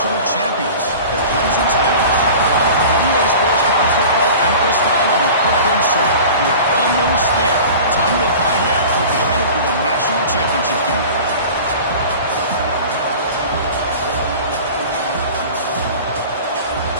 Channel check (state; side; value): inverted; both; correlation -0.39